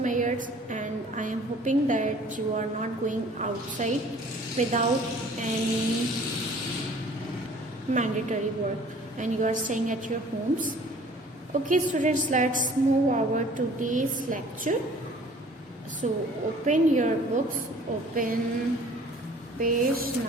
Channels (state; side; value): normal; both; correlation 0.51